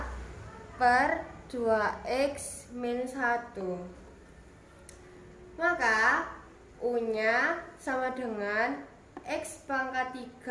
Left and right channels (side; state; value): both; identical; correlation 1.00